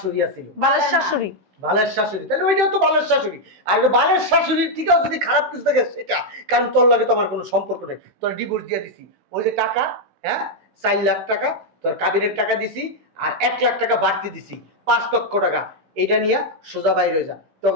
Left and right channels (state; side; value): late; left; 16 ms